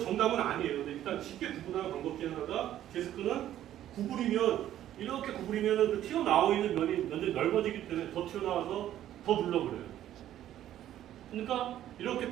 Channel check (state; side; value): quieter; left; 12.2 dB